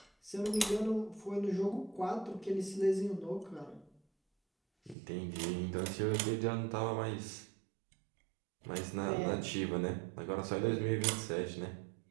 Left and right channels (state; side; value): drops out; left; at 5.0 s